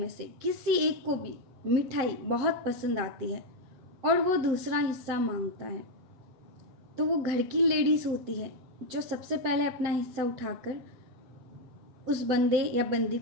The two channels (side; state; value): left; late; 7.7 ms